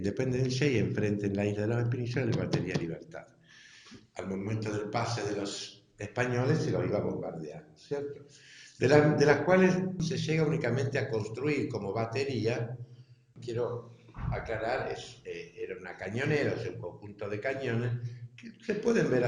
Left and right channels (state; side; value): identical; both; correlation 1.00